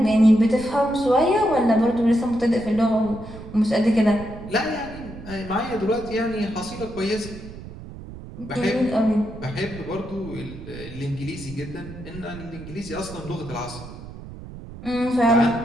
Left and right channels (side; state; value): right; noise; rumble, 14 dB below the sound